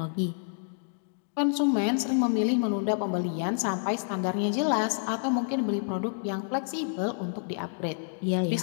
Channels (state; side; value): silent; right; digital silence